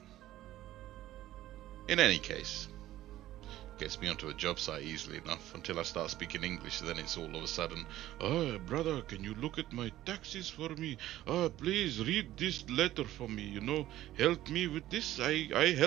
In any case, gets me onto a job site easily enough until I start speaking English. Then it's all of a sudden, "Oh, brother, can you look at my taxes for me? Oh, please read this letter for me, you know, help me with this, I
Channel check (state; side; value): quieter; left; 14.5 dB